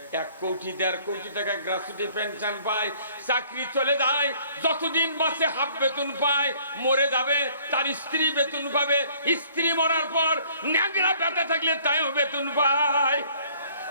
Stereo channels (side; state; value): both; inverted; correlation -0.58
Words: 1 কোটি 1.5 কোটি টাকা গ্র্যাচুইটি পেনশন পায়। চাকরি চলে যায়, যতদিন বাঁচে হাফ বেতন পায়। মরে যাবে, তার স্ত্রী বেতন পাবে। স্ত্রী মরার পর ন্যাংরা পেটে থাকলে তাইও বেতন পায়।